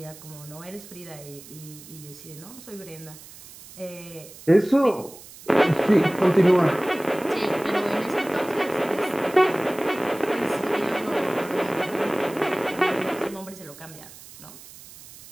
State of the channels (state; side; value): noise; right; hiss, 18 dB below the sound